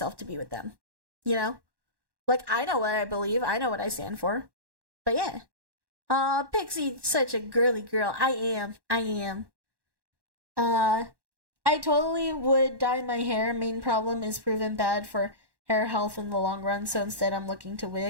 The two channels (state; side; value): late; left; 1.1 ms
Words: to be with them. You know? Like, I know what I believe. I know what I stand for. But yeah. Pixie, such a girly girl. I am. I totally would dye my hair. Main problem is proven bad for hair health in the long run, so instead I'm looking to